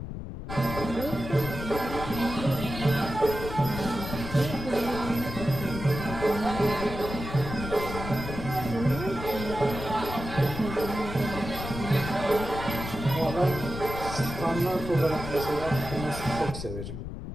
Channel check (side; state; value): left; noise; rumble, 7 dB below the sound